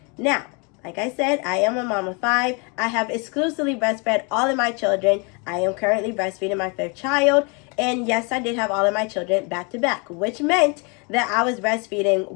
Now, like I said, I am a mom of 5. I have exclusively breastfed all of my children. I am currently breastfeeding my 5th child. And yes, I did have all of my children back to back, which meant that I was breastfeeding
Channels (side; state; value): right; quieter; 32.6 dB